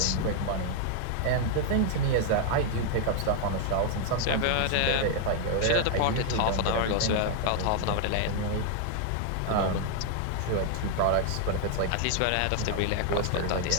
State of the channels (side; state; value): both; different; correlation 0.00